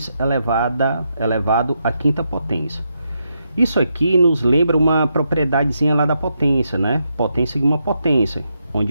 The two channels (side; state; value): both; inverted; correlation -0.82